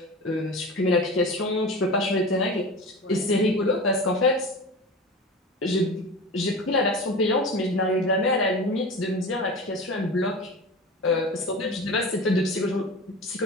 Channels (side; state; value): both; normal; correlation 0.31